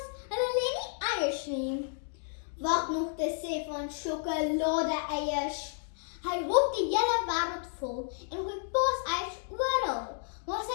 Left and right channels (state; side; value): silent; right; digital silence